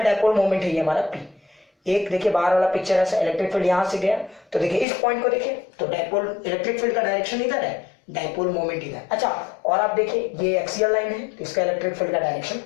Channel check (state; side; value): drops out; right; at 4.9 s